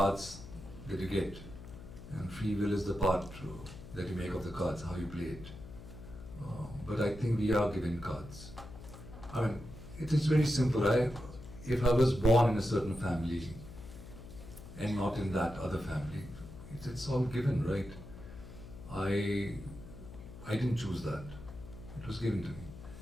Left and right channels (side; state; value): left; noise; hum, 14 dB below the sound